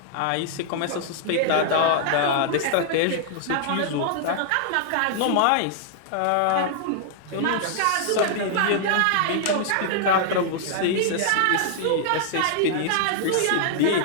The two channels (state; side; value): different; both; correlation -0.01